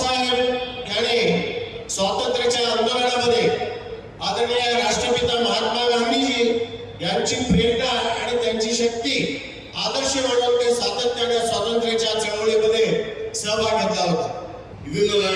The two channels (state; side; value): identical; both; correlation 1.00